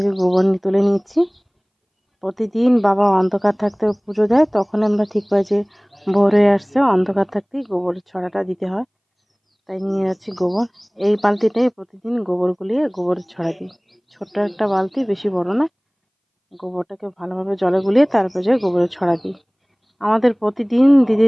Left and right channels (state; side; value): identical; both; correlation 1.00